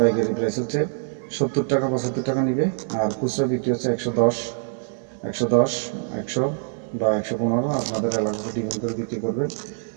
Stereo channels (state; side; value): silent; left; 61 dB below the other